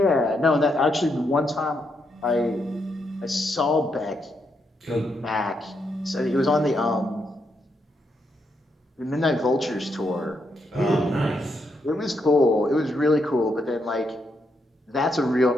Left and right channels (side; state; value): both; normal; correlation 0.79